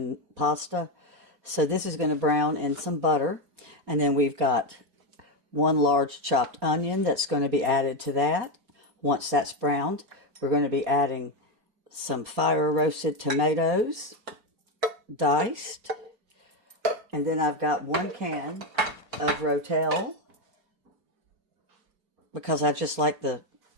pasta. So this is going to brown in some butter. And then we've got one large chopped onion that's going to be added to that. Once that's browned, we're going to be adding some fire roasted tomatoes, diced. And then I've got 1 can of Rotel, because I just like the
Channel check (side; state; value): left; late; 4.2 ms